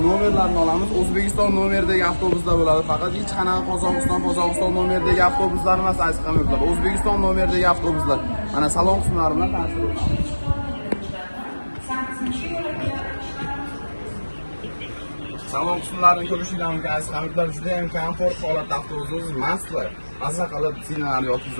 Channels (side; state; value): both; inverted; correlation -1.00